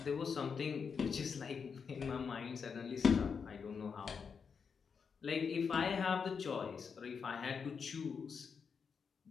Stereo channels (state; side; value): quieter; right; 6.0 dB